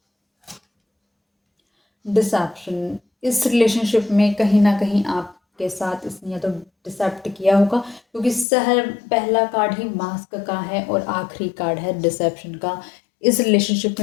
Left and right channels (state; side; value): drops out; right; at 8.5 s